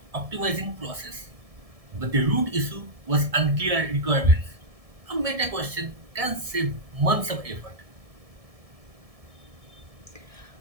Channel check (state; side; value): late; left; 1.7 ms